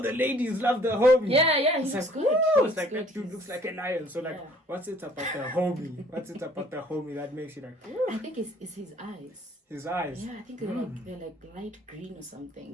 the ladies love the homie. Yeah, he It's looks like, good. woo, it's like that dude looks like a lion. So like, what's it about the homie? What's it about the homie that makes you like? Woo? I think it's his eyes. His eyes. Yeah, I think they're like light green or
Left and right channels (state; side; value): normal; both; correlation 0.57